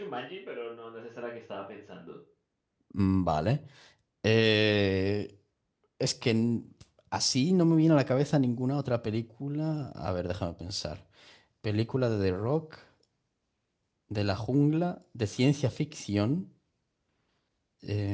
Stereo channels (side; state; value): both; identical; correlation 1.00